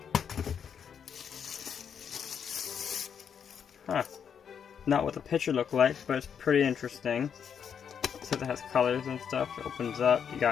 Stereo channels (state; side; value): quieter; right; 7.6 dB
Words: Huh. Not what the picture looked like, but it's pretty interesting. It says it has colors and stuff. It opens up. You